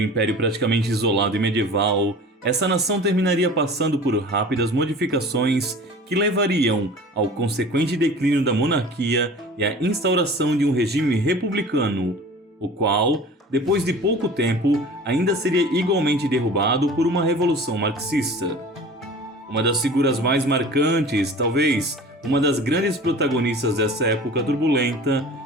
um império praticamente isolado e medieval, essa nação terminaria passando por rápidas modificações que levariam ao consequente declínio da monarquia e à instauração de um regime republicano, o qual, depois de pouco tempo, ainda seria igualmente derrubado por uma revolução marxista. Uma das figuras mais marcantes, talvez uma das grandes protagonistas dessa época turbulenta,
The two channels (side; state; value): both; normal; correlation 0.41